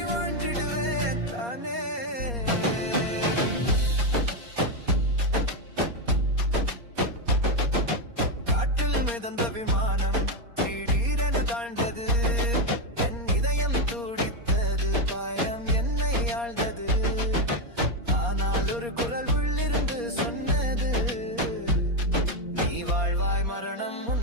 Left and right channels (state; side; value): late; left; 4.2 ms